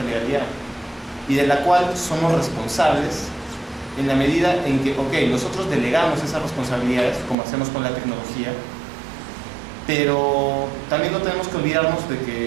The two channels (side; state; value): left; drops out; at 7.4 s